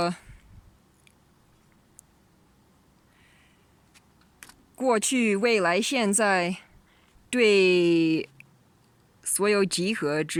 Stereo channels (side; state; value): both; identical; correlation 1.00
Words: 过去、未来、现在，对所有集合